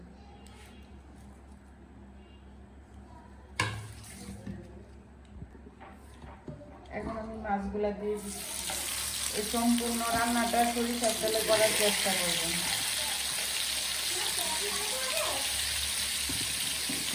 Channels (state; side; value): identical; both; correlation 1.00